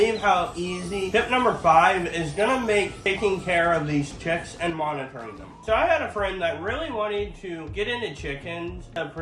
how easy. Tip number 5 is gonna make taking care of these chicks and monitoring them. So I had a friend that really wanted to get into chickens to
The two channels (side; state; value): both; identical; correlation 1.00